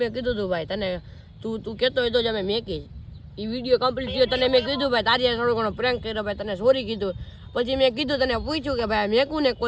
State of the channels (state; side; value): identical; both; correlation 1.00